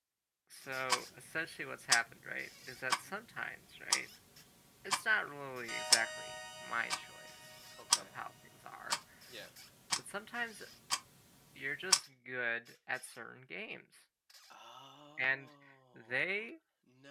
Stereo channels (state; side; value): identical; both; correlation 1.00